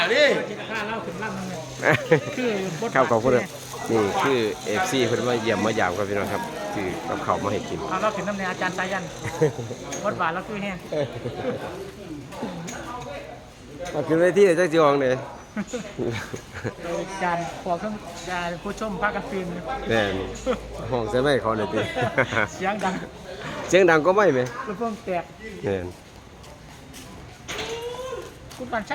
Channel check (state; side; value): identical; both; correlation 1.00